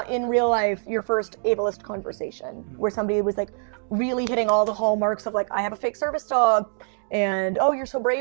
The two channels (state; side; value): silent; left; digital silence